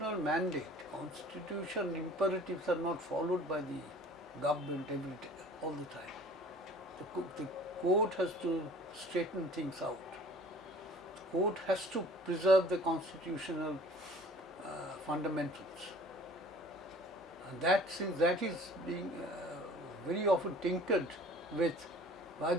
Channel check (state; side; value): normal; both; correlation 0.48